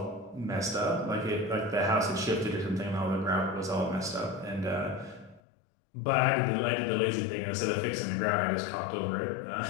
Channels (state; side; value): drops out; right; at 5.4 s